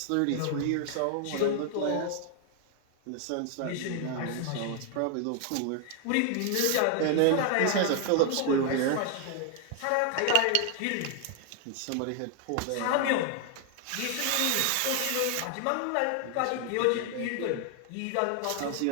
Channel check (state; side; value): different; both; correlation 0.00